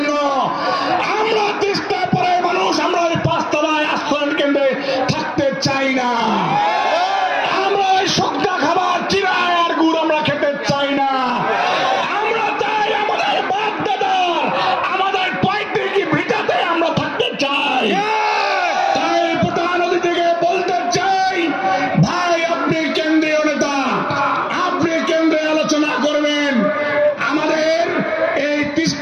আমরা তিস্তা পাড়ার মানুষ আমরা ওই 5 তলায় আশ্রয়ন কেন্দ্রে থাকতে চাই না। আমরা ওই শুকনা খাবার চিরায় আর গুড় আমরা খেতে চাই না। আমরা চাই আমাদের বাপ দাদার আমাদের পৈতৃক ভিটাতে আমরা থাকতে চাই। তাই প্রধান অতিথিকে বলতে চাই, ভাই আপনি কেন্দ্রীয় নেতা, আপনি কেন্দ্রে আলোচনা করবেন, আমাদের এই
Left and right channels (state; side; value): identical; both; correlation 1.00